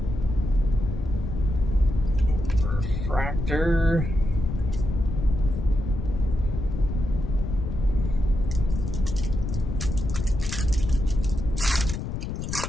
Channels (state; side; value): noise; left; rumble, 4 dB below the sound